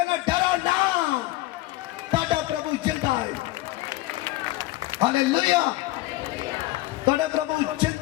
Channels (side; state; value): right; quieter; 17.6 dB